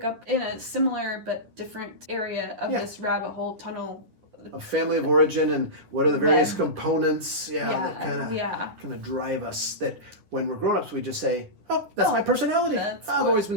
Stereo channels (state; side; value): late; left; 9.9 ms